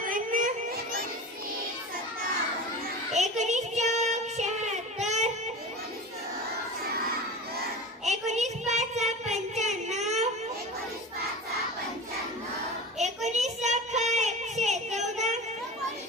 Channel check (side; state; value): both; normal; correlation 0.32